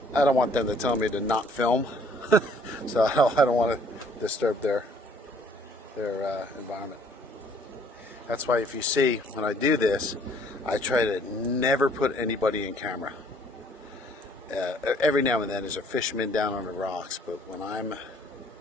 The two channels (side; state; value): both; normal; correlation 0.60